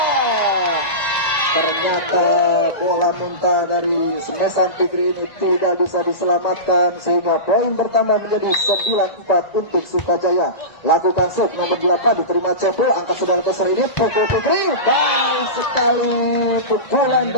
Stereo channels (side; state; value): right; late; 2.0 ms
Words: ternyata bola muntah dari semesan Fikri ini tidak bisa diselamatkan sehingga poin pertama menjadi 9-4 untuk Sukajaya. Lakukan set nomor 8 diterima Cepo, angka 900 ini pukul Fikri, baik sekali pukulan